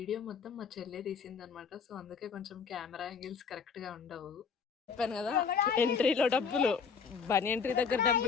మొత్తం మా చెల్లె తీసిందనమాట. సో అందుకే కొంచెం కెమెరా యాంగిల్స్ కరెక్ట్గా ఉండవు. చెప్పాను కదా, ఎంట్రీలో డబ్బులు, బనీ ఎంట్రీ దగ్గర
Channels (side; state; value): right; quieter; 6.0 dB